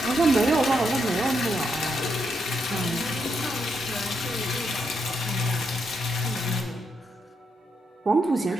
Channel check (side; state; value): both; normal; correlation 0.80